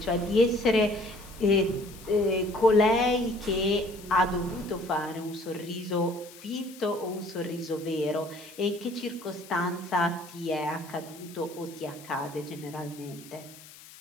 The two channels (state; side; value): noise; left; hiss, 19 dB below the sound